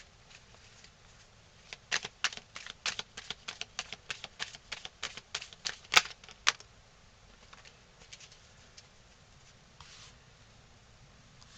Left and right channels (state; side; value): identical; both; correlation 1.00